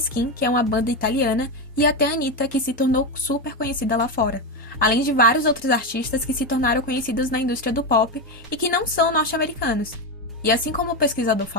que é uma banda italiana, e até a Anitta, que se tornou super conhecida lá fora. Além de vários outros artistas que se tornaram conhecidos na indústria do pop e que não são norte-americanos. E assim como o pesquisador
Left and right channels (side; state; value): both; normal; correlation 0.13